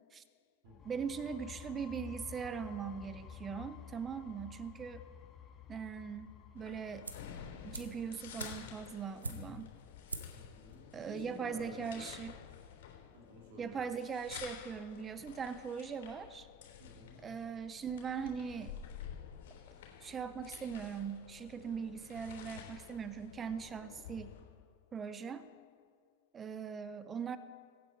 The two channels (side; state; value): left; quieter; 4.4 dB